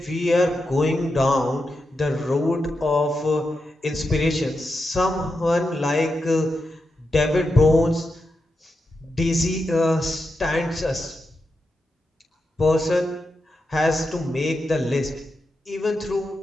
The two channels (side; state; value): both; normal; correlation 0.87